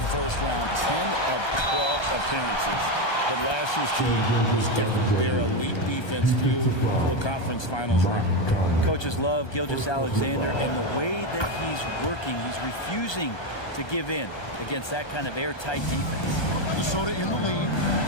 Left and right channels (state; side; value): late; right; 1.2 ms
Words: first round, 10 of 12 appearances. But last year's team was different. Their elite defense fueled the conference finals run. Coaches love Gilgeous-Alexander, and the way that he's working, he's refusing to give in against that kind of airtight defense. Minnesota in the lead.